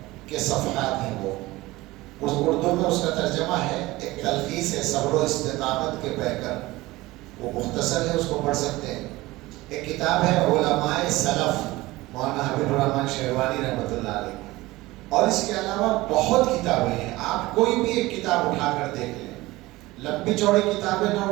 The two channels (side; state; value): left; quieter; 19.4 dB